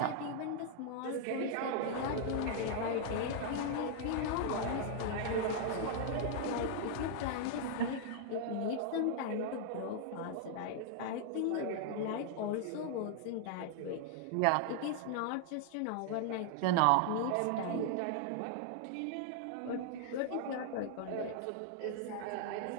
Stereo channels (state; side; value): different; both; correlation 0.00